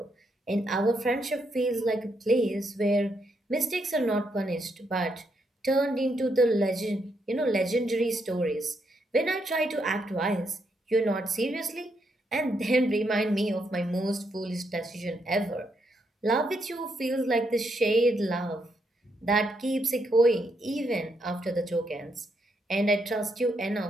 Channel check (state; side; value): normal; both; correlation 0.78